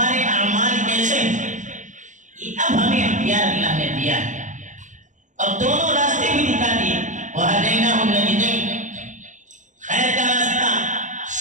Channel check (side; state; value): left; late; 0.36 ms